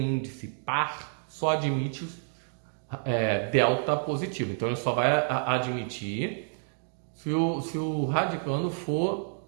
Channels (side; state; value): left; silent; digital silence